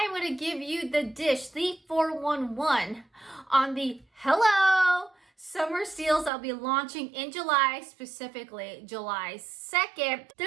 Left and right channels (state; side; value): drops out; left; at 6.3 s